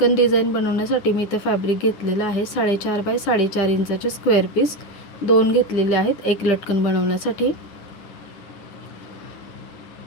डिझाइन बनवण्यासाठी मी इथे फॅब्रिक घेतलेला आहे 4.5 बाय 4.5 इंचाचे स्क्वेअर पीस 2 घेतलेले आहेत एक लटकन बनवण्यासाठी।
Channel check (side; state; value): right; late; 10 ms